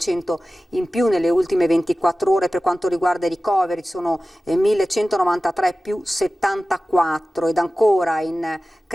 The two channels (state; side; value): normal; both; correlation 0.96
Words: in più nelle ultime 24 ore. Per quanto riguarda i ricoveri sono 1.193 più 74 ed ancora